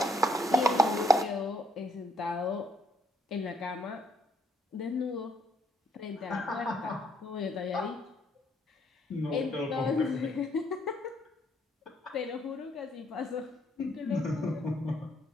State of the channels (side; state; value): both; normal; correlation 0.70